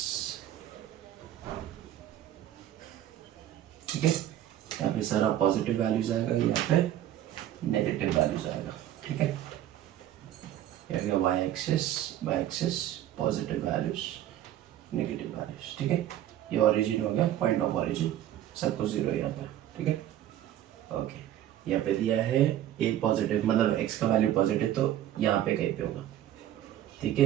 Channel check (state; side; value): quieter; left; 12.2 dB